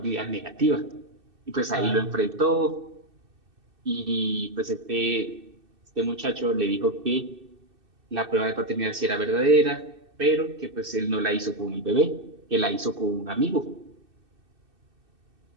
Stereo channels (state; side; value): late; left; 2.6 ms